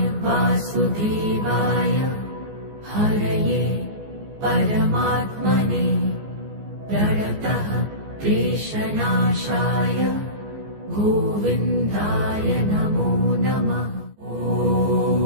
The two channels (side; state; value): left; late; 14 ms